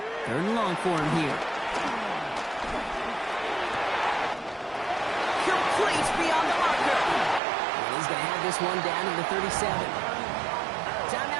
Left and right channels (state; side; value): drops out; left; at 7.4 s